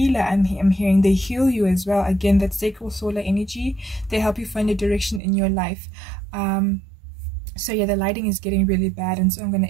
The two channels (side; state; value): left; drops out; at 5.2 s